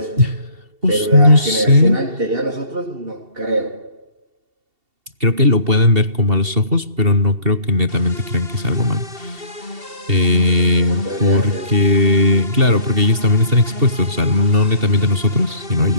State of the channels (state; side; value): late; left; 2.7 ms